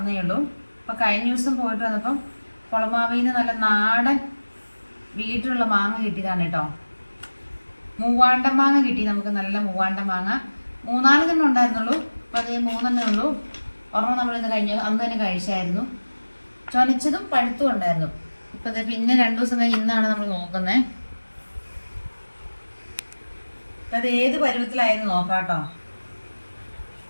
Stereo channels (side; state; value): both; inverted; correlation -1.00